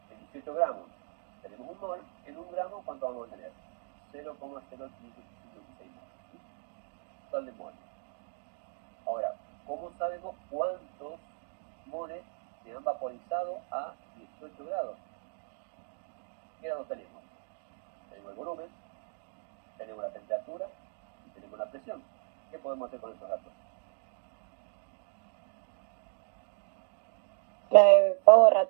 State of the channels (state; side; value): silent; left; 55 dB below the other